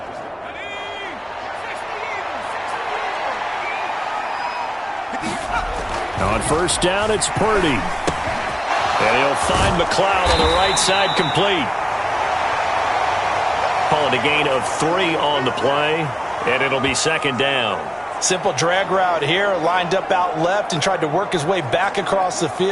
On first down, it's Purdy. And he'll find McLeod on the right side complete. Call it a gain of 3 on the play, and it'll be 2nd down. Simple drag route here, lined up out left and tried to work his way back across the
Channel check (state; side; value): identical; both; correlation 1.00